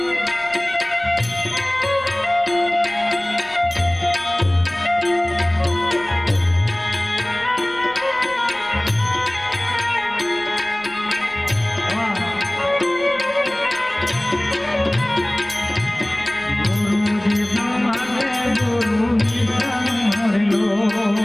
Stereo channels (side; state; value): left; noise; rumble, 27 dB below the sound